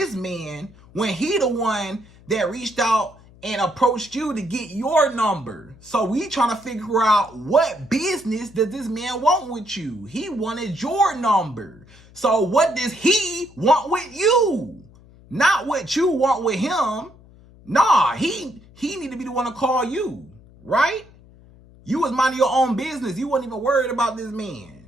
man when he the one that reached out and approached you to get your number. So we trying to figure out what business does this man want with you? He wanted your number. So what does he want with you? Not what you want with him. Nah, he need to be the one to call you, right? You was minding your own business. You wasn't even worried about this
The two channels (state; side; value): noise; left; hum, 24 dB below the sound